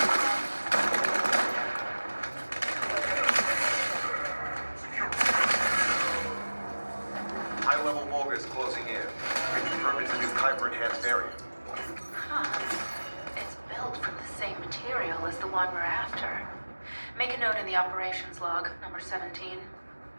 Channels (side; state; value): both; inverted; correlation -1.00